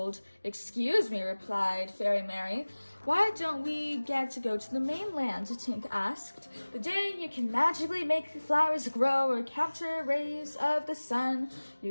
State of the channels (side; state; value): both; inverted; correlation -1.00